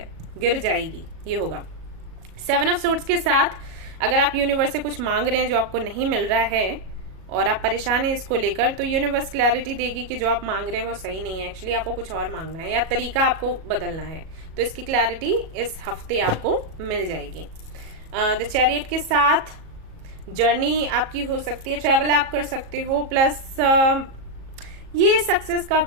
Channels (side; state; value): left; late; 37 ms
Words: गिर जाएगी, ये होगा। 7 ऑफ सोर्ड्स के साथ अगर आप यूनिवर्स से कुछ मांग रहे हैं जो आपको नहीं मिल रहा है और आप परेशान हैं इसको लेकर, तो यूनिवर्स क्लैरिटी देगी कि जो आप मांग रहे हैं वो सही नहीं है, एक्चुअली आपको कुछ और मांगना है या तरीका आपको बदलना है। तो इसकी क्लैरिटी इस हफ्ते आपको मिल जाएगी। द चैरियट के साथ जर्नी आपकी हो सकती है, ट्रैवल आप कर सकते हो, प्लस ये सक्सेस का